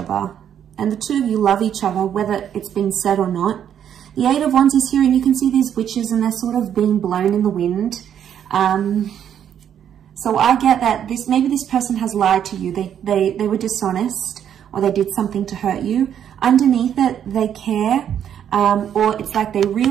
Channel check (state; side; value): quieter; left; 9.3 dB